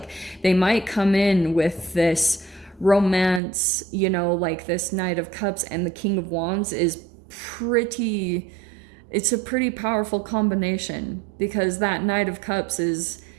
they might come in with this romance, you know, like this Knight of Cups, and the King of Wands is it's a pretty powerful combination, because that Knight of Cups is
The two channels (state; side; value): drops out; left; at 3.4 s